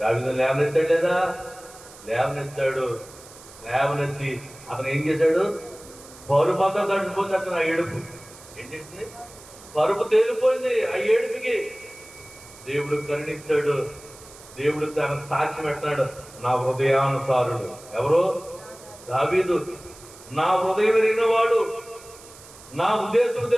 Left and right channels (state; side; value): noise; right; hiss, 20 dB below the sound